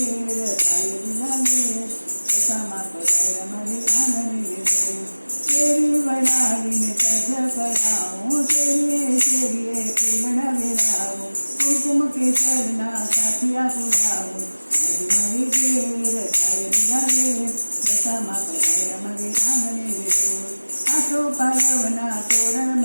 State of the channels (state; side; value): inverted; both; correlation -1.00